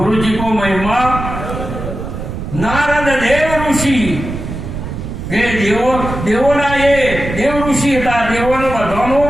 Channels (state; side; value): noise; right; rumble, 7 dB below the sound